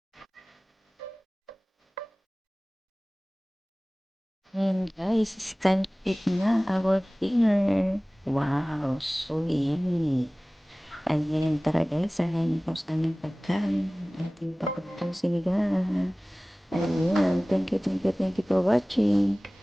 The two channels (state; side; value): normal; both; correlation 0.98